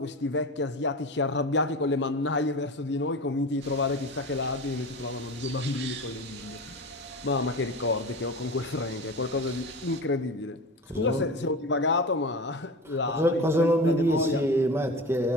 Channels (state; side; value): normal; both; correlation 0.30